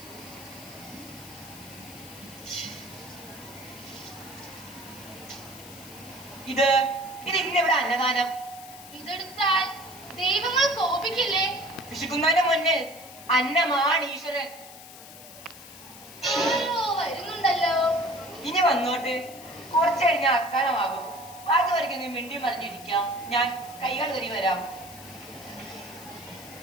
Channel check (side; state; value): left; noise; hiss, 17 dB below the sound